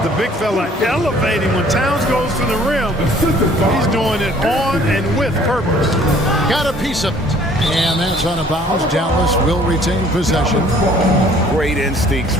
the big fella elevating when Towns goes to the rim. He's doing it on and with purpose. Got a piece of it. And that's out of bounds. Dallas will retain possession. Great instincts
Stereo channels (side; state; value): both; normal; correlation 0.56